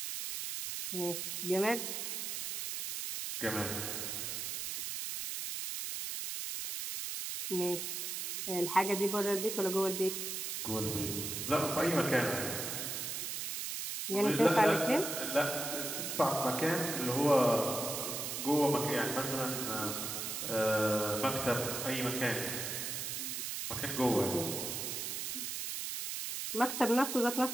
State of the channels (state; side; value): noise; right; hiss, 4 dB below the sound